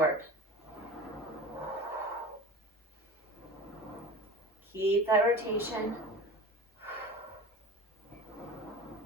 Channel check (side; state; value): both; normal; correlation 0.35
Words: Keep that rotation.